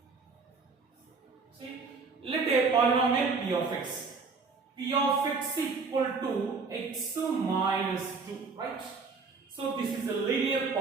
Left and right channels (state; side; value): quieter; left; 4.6 dB